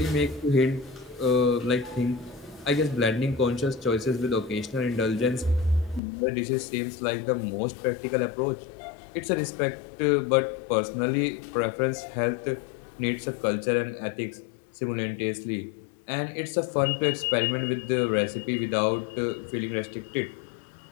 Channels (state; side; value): drops out; right; at 6.0 s